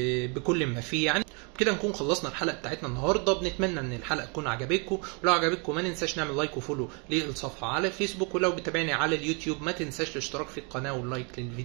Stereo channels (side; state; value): left; quieter; 34.2 dB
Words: بكل ما فيه يعني. بكده نكون خلصنا الحلقه بتاعتنا النهارده. بنتمنى ان الحلقه تكون عجبتكم، ولو عجبتكم ما ننساش نعمل لايك وفولو للصفحه على فيسبوك، ولو بتابعني على اليوتيوب ما تنساش الاشتراك في القناه واللايك